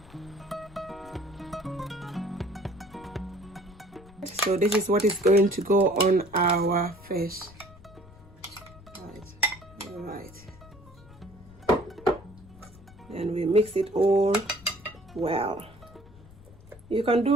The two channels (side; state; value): left; noise; rumble, 23 dB below the sound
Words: So this is what is going to go on our fish. Right. Then we mix it all well. You can